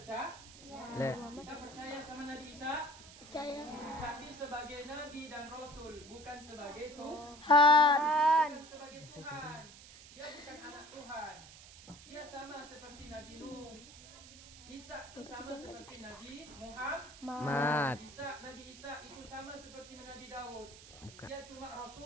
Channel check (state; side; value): noise; right; hiss, 18 dB below the sound